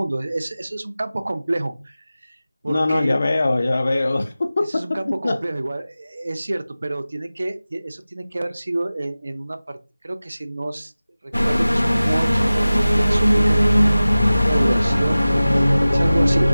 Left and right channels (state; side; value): inverted; both; correlation -0.96